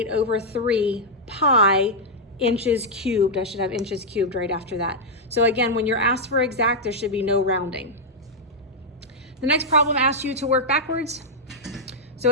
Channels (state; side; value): normal; both; correlation -0.04